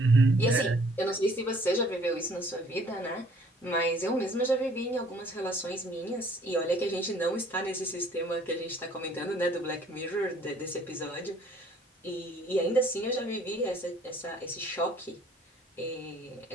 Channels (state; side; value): normal; both; correlation 0.58